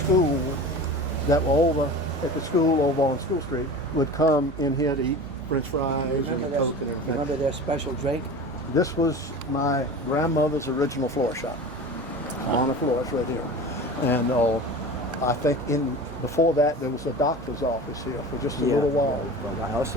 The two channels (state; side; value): normal; both; correlation 0.34